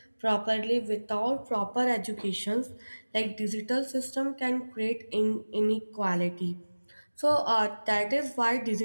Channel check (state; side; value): inverted; both; correlation -1.00